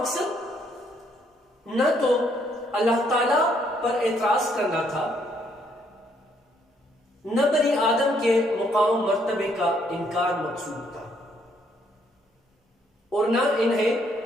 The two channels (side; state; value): both; normal; correlation 0.69